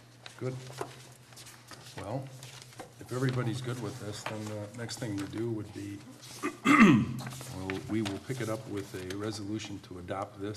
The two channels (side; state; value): both; identical; correlation 1.00